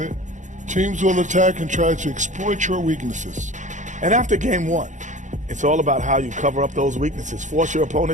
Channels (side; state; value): left; late; 0.36 ms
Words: Teams will attack and try to exploit your weaknesses. And after game one, it's all about how you cover up those weaknesses. Force your